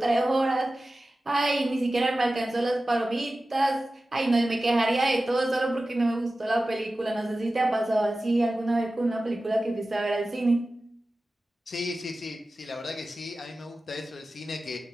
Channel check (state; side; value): normal; both; correlation 0.95